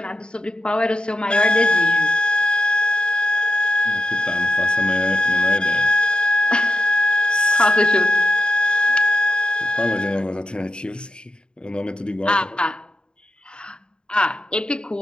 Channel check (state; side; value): late; right; 0.050 ms